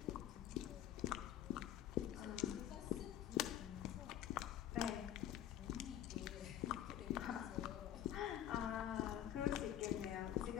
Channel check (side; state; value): right; quieter; 11.5 dB